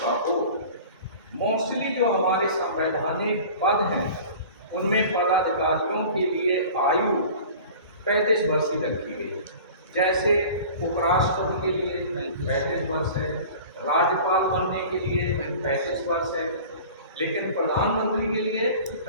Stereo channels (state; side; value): inverted; both; correlation -0.41